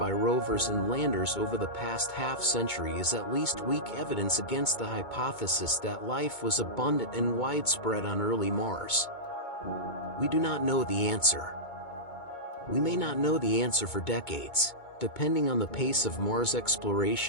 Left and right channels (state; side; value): late; right; 2.2 ms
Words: rovers and landers over the past half-century is at least weak evidence against the hypothesis that life was abundant and widespread on early Mars. We do not know the answer. We may not know the answer for decades, depending on the pace of Mars